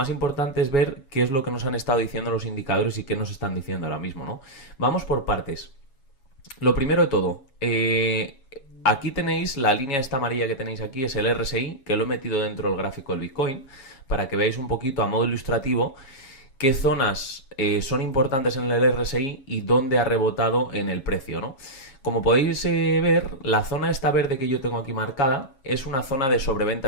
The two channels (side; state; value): right; late; 7.2 ms